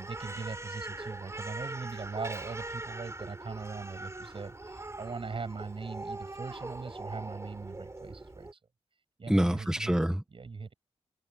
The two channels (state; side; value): normal; both; correlation 0.87